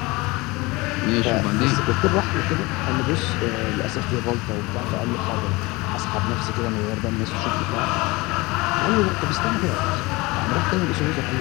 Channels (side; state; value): right; quieter; 23.4 dB